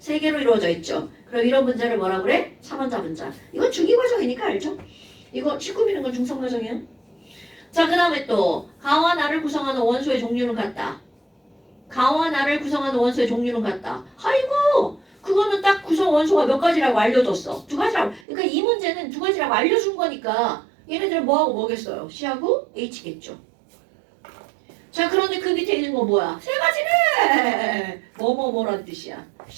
개로 이루어져 있죠. 그럼 이런 문제를 뭐라 그래? 3원자 분자. 이건 중위과정이니까 알죠? 이거 19비는 건 중성과정이야. 자, 그 다음에 또 가와 나를 구성하는 원소의 종류는 같다. 가와 나를 구성하는 원소의 종류는 같다. 아이고, 그거는 딱 구성 원소가 몇 가지라고 알려줬어. 두 가지라고. 그러니까 이 문제는 두 가지라고 알려준 거니까 얘네들은 뭐하고 뭐겠어요? C하고 H겠죠. 자, 그런데 그 밑에 있는 거 뭐야? 세 가지네. 뭐뭐뭐란 뜻이야.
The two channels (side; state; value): left; drops out; at 18.2 s